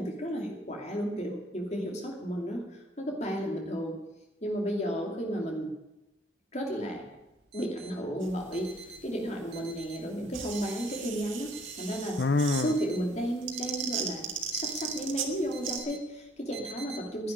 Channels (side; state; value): both; normal; correlation 0.62